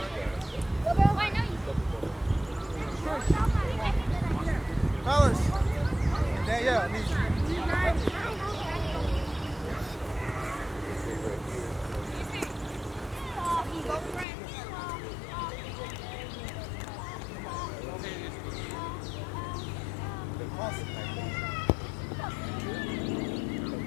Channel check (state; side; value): drops out; right; at 14.2 s